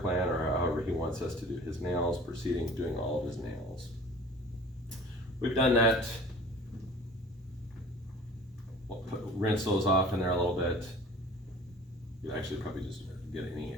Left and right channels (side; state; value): both; normal; correlation 0.45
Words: or however he wants us to do his nails, proceeding doing all of his nails. We've done that. We'll rinse those off in there a little bit. You actually probably just get any